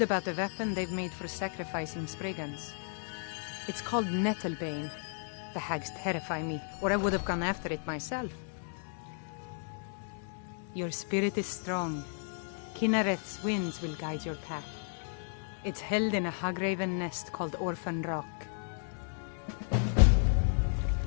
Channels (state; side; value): silent; right; 55 dB below the other